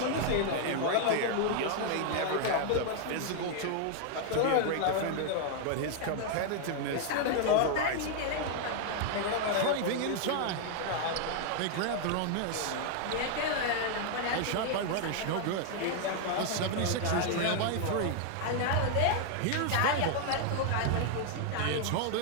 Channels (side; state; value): both; different; correlation 0.00